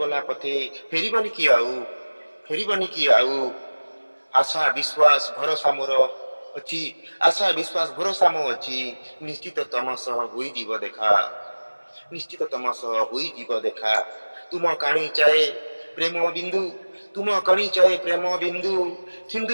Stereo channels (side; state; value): both; inverted; correlation -1.00